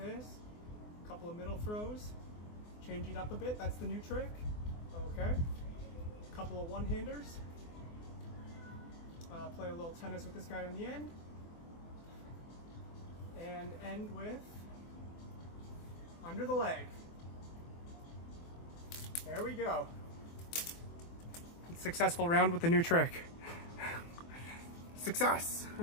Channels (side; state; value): right; late; 24 ms